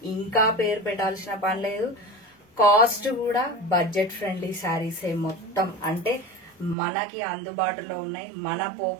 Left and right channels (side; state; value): left; drops out; at 6.8 s